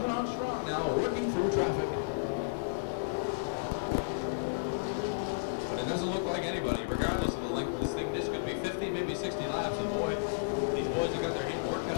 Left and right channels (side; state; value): right; quieter; 32.7 dB